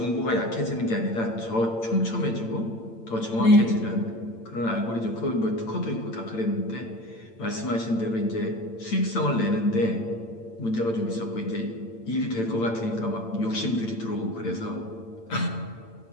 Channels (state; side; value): late; right; 8.8 ms